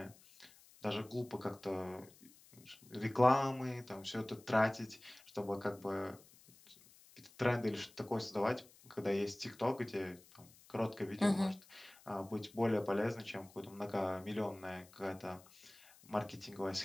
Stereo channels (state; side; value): noise; left; hiss, 24 dB below the sound